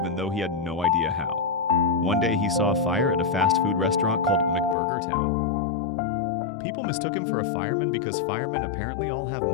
though he had no idea how. One day he saw a fire at a fast food restaurant called McBurgertown. People mistook him for a fireman because firemen apparently all have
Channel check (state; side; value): drops out; right; at 4.8 s